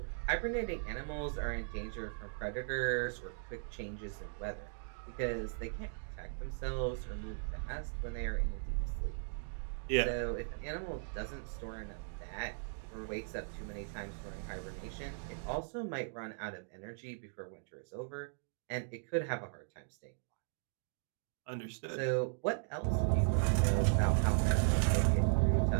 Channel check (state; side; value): silent; left; digital silence